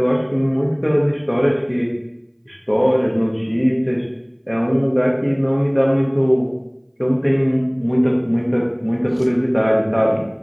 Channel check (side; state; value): both; identical; correlation 1.00